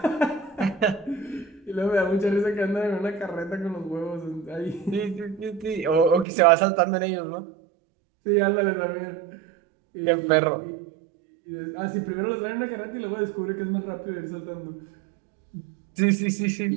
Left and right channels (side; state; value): left; drops out; at 6.2 s